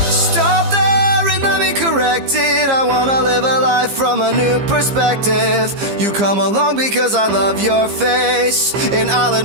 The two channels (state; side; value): late; left; 15 ms